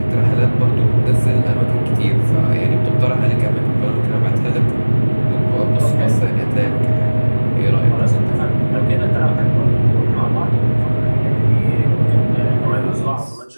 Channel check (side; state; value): both; inverted; correlation -1.00